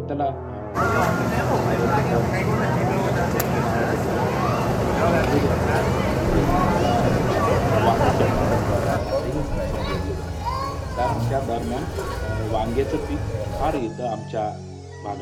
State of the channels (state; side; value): identical; both; correlation 1.00